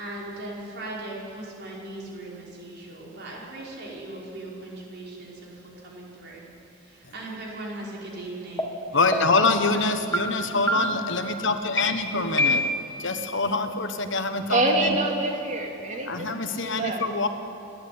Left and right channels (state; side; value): normal; both; correlation -0.03